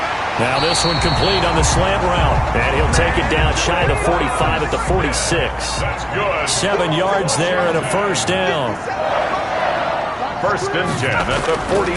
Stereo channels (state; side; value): identical; both; correlation 1.00